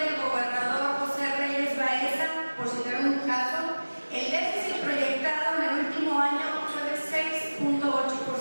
gobernador José Reyes Baeza, por citar un caso, el déficit proyectado en el último año fue de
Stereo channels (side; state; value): both; inverted; correlation -1.00